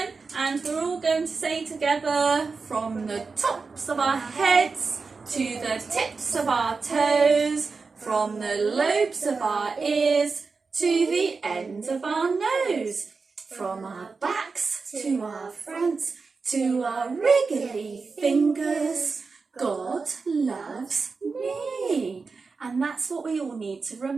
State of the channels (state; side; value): quieter; left; 4.5 dB